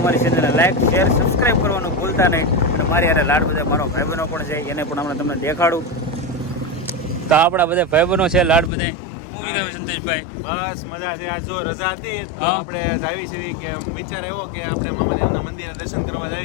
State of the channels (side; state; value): right; drops out; at 8.7 s